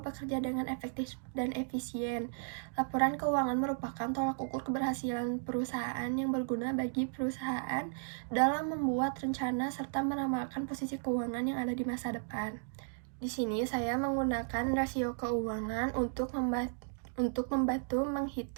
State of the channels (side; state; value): left; silent; digital silence